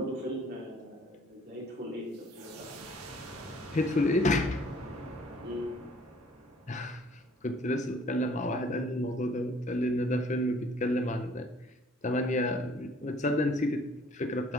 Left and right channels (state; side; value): normal; both; correlation 0.57